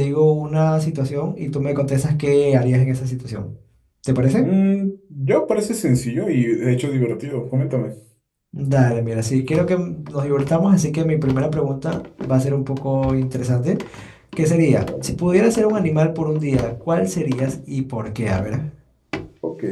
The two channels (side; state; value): both; identical; correlation 1.00